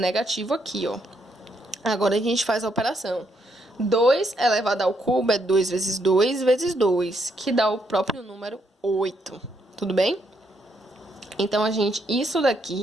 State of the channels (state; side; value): normal; both; correlation 0.75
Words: aqui, ó. Agora, a gente faz a operação. 2 elevado ao cubo é 2 vezes 2 vezes 2, que dá o próprio número 8. Tudo bem? Então, isso